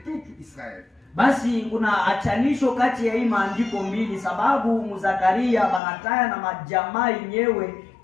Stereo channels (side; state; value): right; drops out; at 5.8 s